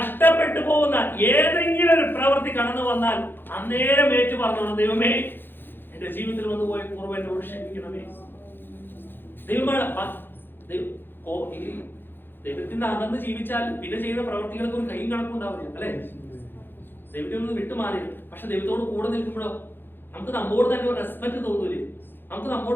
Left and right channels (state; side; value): late; right; 0.099 ms